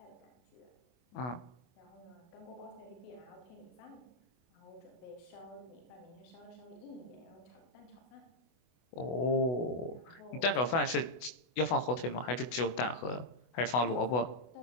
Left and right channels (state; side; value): late; right; 24 ms